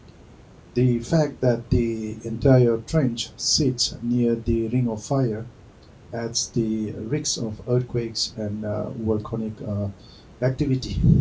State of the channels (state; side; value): identical; both; correlation 1.00